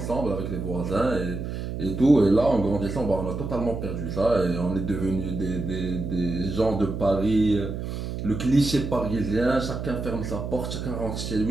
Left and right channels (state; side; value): noise; right; hum, 5 dB below the sound